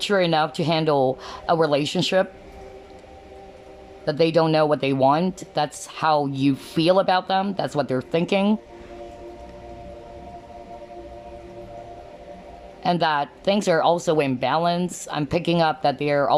enough to handle a relationship, that they don't know what they want. That's how you feel about them. That's what they're thinking. And that things are also in balance. I'm picking up that they're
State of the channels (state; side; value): identical; both; correlation 1.00